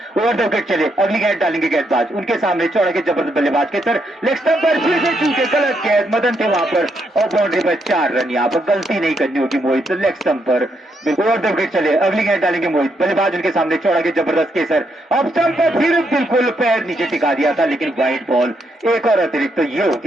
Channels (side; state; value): both; normal; correlation 0.78